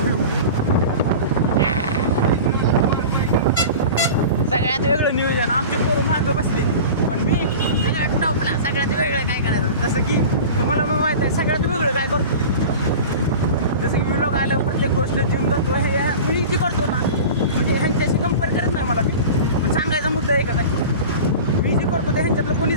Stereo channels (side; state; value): both; inverted; correlation -0.34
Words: सगळ्यात वेगळं नियोजन आमचे पोरं मागं बसले पण मी सगळ्यात टॉपला सगळ्यात वेगळं काय करायचं जसं की तुम्हाला मग माहीत आहे सगळ्यात वेगळं काय करतो जसं की मी लोक आलं प्रत्येक गोष्ट जिम करतो हे मी जी करतो ना म्हणजे ह्यांच्याशी कंपेअर करत नाही मला मी पण सांगायचा मुद्दा एकच आहे मी जी करतो ते ह्यांच्यातलं